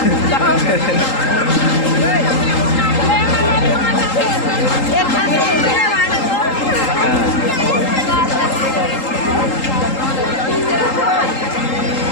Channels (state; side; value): late; right; 3.8 ms